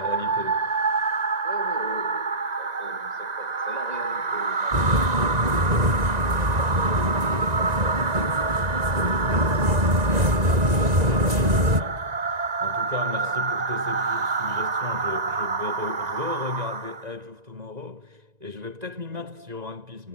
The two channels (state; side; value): late; left; 1.9 ms